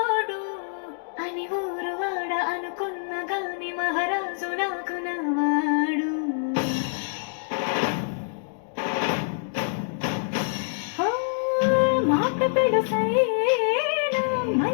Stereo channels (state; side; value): silent; right; digital silence